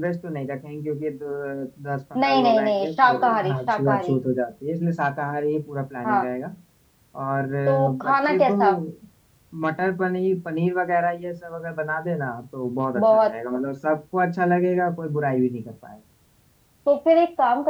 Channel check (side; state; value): both; identical; correlation 1.00